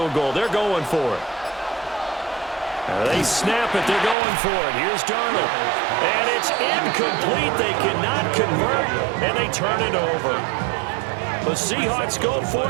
goal. They're going for it. They snap it. They're going for it. Here's Darnold. And it's incomplete. They cannot convert, and they turn it over. The Seahawks go for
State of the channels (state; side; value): drops out; left; at 4.2 s